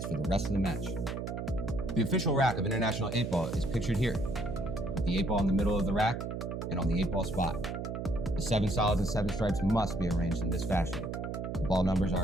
for the rest of the match. The official rack of International 8-ball is pictured here, with the 8-ball in the middle of the rack and on the 8-ball spot. The 7 solids and 7 stripes must be arranged in this fashion. The ball numbers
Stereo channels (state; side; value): noise; right; hum, 5 dB below the sound